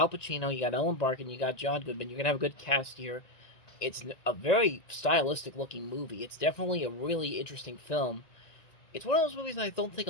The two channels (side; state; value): right; late; 1.9 ms